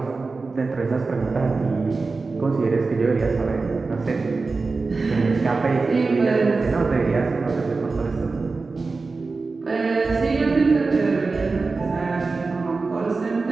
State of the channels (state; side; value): quieter; left; 4.0 dB